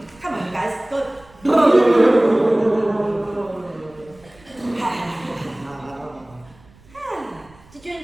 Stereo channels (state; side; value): noise; right; rumble, 27 dB below the sound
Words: Come on, guys. Go. Did you